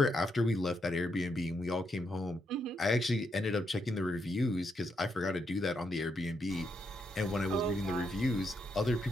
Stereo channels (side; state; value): both; normal; correlation 0.79